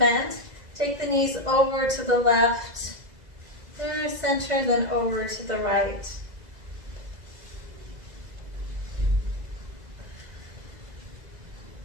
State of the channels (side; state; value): left; late; 2.0 ms